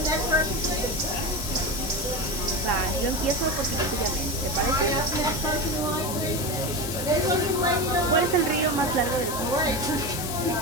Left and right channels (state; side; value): noise; left; hiss, 6 dB below the sound